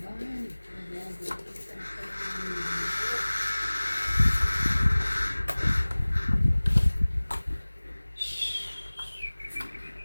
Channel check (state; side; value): inverted; both; correlation -1.00